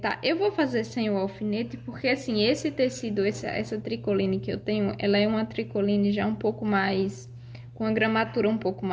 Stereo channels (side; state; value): both; identical; correlation 1.00